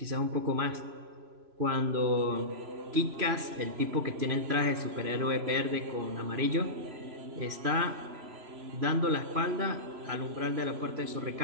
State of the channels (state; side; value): late; left; 3.0 ms